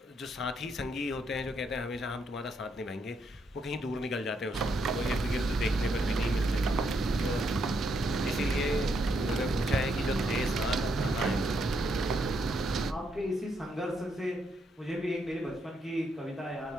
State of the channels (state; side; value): normal; both; correlation 0.77